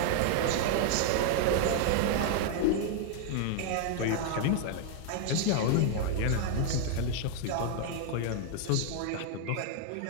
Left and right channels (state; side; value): different; both; correlation 0.00